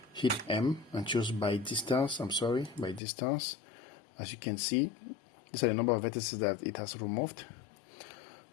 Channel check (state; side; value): drops out; right; at 3.0 s